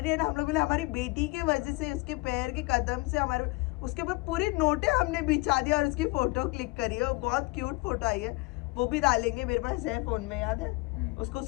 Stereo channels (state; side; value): quieter; right; 24.3 dB